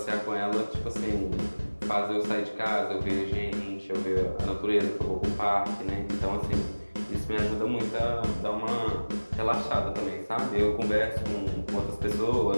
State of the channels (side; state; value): both; inverted; correlation -1.00